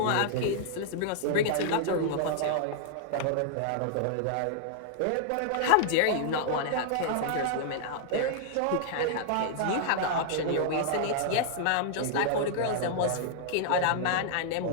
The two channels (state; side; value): different; both; correlation -0.01